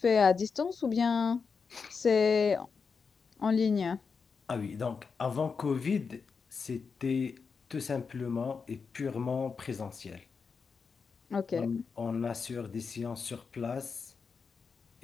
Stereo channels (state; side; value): quieter; right; 5.4 dB